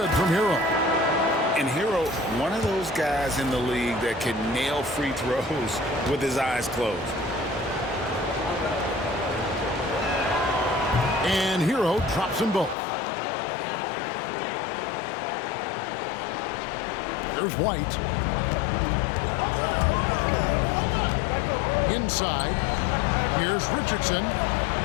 from Hero. And Hero, one of those guys in the league that can nail free throws with his eyes closed. And Hero drops them both. There's White. Inside. Here's Richardson.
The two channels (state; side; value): drops out; right; at 12.8 s